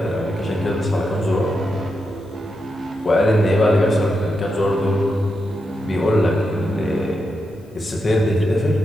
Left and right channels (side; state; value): both; normal; correlation 0.86